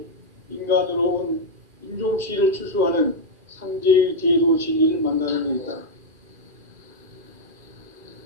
인간으로 온 인종씨를 추수하는 상제의 대도 진리를 만나는 데 있다.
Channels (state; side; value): late; left; 2.4 ms